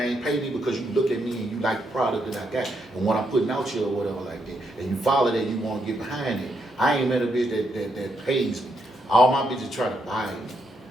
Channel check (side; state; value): both; normal; correlation 0.78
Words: pay me because you look at me and you like the product that I got and what I'm putting out here or whatever like that. And you follow that, you wanna get behind it. I ain't met a bitch that pays me. All my bitches try to buy me